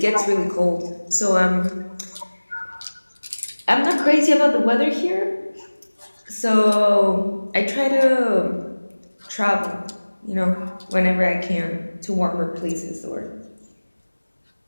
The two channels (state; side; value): inverted; both; correlation -1.00